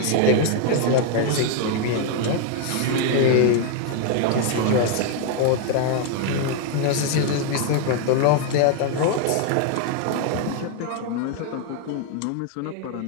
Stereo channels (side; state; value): both; different; correlation 0.01